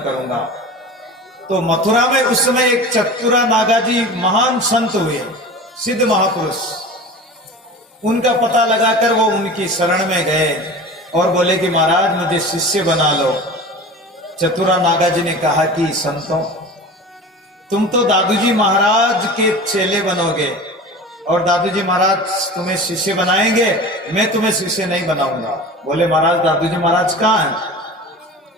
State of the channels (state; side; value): normal; both; correlation 0.35